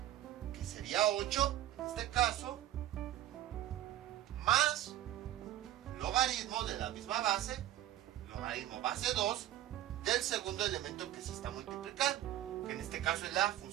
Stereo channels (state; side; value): quieter; left; 13.2 dB